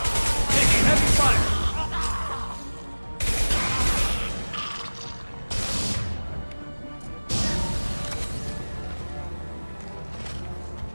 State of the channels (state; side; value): inverted; both; correlation -1.00